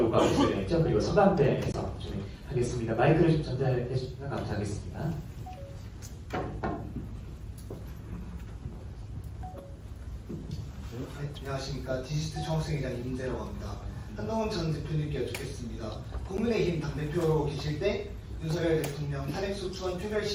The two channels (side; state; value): both; identical; correlation 1.00